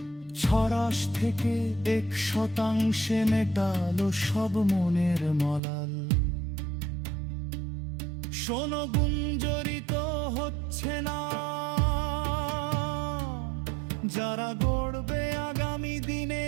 ছড়াশ থেকে 1% মেটালো সব মনের মলাল। শোনো গুঞ্জরিত হচ্ছে না, যারা গড়বে আগামী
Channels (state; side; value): drops out; left; at 5.6 s